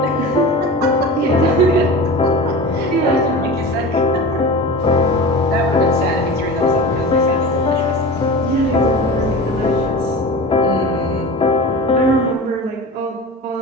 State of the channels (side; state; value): both; normal; correlation 0.32